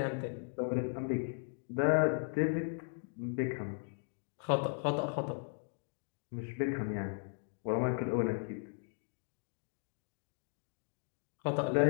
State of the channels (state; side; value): silent; right; digital silence